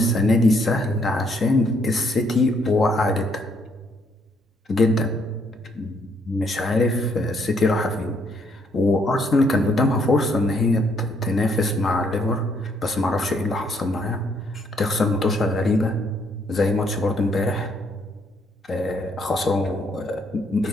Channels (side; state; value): both; normal; correlation 0.70